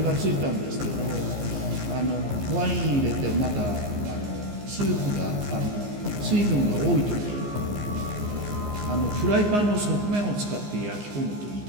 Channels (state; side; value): late; left; 14 ms